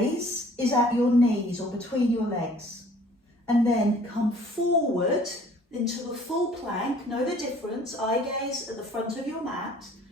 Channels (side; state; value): both; normal; correlation 0.54